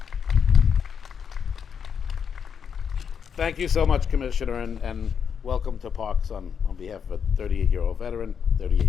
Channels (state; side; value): quieter; right; 7.1 dB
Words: Thank you so much, Commissioner, and welcome to Parks on behalf of a 38-year